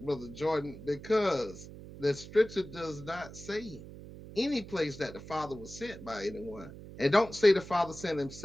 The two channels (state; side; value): noise; right; hum, 14 dB below the sound